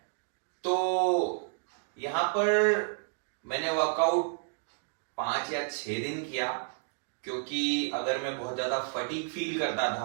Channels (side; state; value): left; silent; digital silence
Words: तो यहां पर मैंने वर्कआउट 5 या 6 दिन किया, क्योंकि अगर मैं बहुत ज्यादा फटीग फील करता